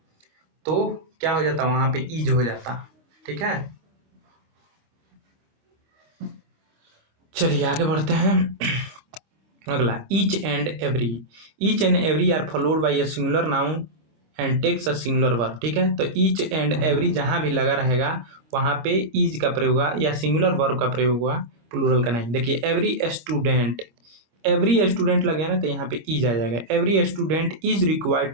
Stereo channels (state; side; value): late; left; 26 ms